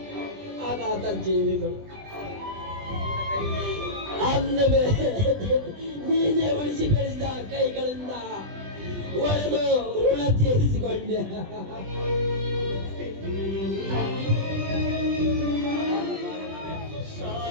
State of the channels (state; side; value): late; left; 20 ms